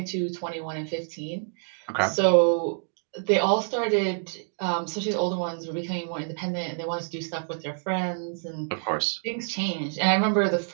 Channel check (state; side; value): silent; left; digital silence